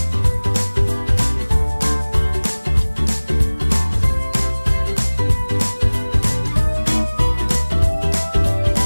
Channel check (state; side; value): inverted; both; correlation -1.00